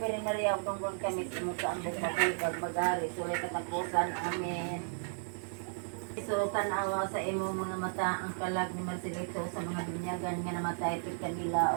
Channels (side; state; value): left; silent; digital silence